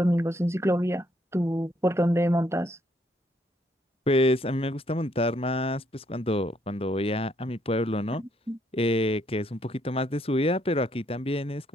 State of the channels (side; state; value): both; normal; correlation 0.71